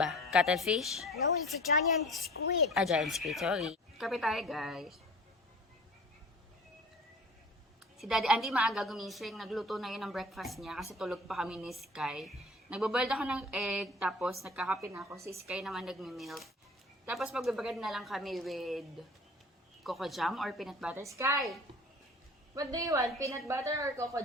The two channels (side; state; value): both; normal; correlation 0.42